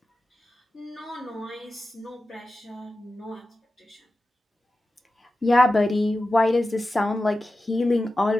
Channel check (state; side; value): normal; both; correlation 0.93